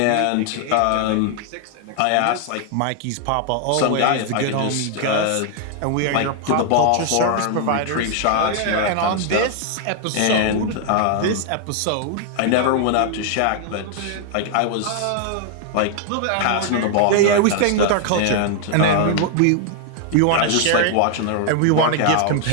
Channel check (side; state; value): both; different; correlation 0.00